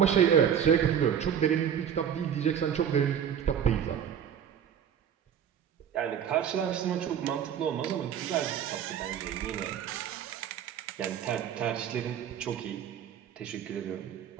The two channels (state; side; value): quieter; left; 8.7 dB